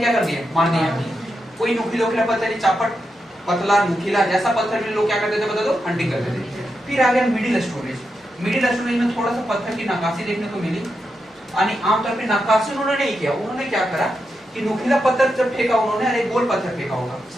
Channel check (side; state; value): both; normal; correlation 0.86